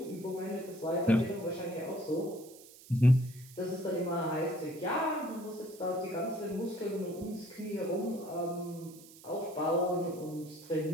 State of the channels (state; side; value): noise; right; hiss, 20 dB below the sound